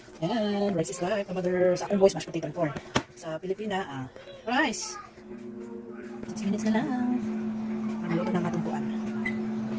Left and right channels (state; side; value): identical; both; correlation 1.00